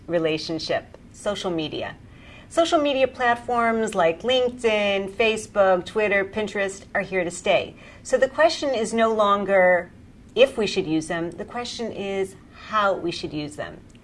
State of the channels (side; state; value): both; identical; correlation 1.00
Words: relationship, social media. Social media platforms like LinkedIn, Facebook, Twitter, Pinterest are here to stay. So the question is no longer if we should use them, the question is how we should use them.